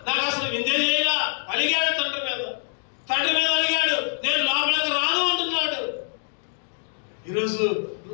నాకు అసలు విందే చేయాల అలిగాడు తండ్రి మీద అలిగాడు. నేను లోపలికి రాను అంటున్నాడు. ఈరోజు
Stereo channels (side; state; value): right; silent; digital silence